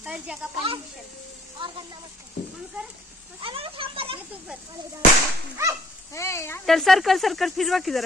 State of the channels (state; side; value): normal; both; correlation 0.59